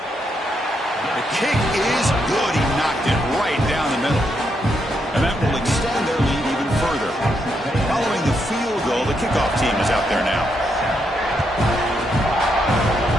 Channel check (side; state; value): both; normal; correlation 0.79